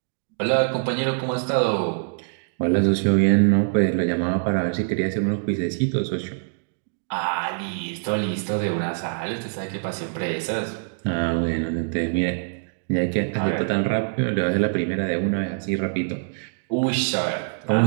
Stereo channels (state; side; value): silent; left; digital silence